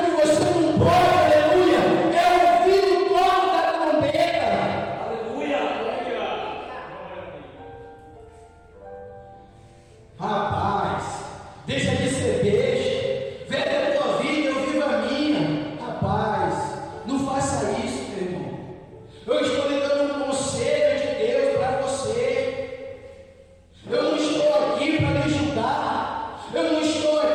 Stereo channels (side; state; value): both; identical; correlation 1.00